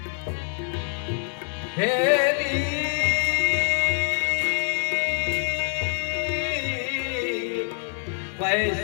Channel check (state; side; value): silent; right; 62 dB below the other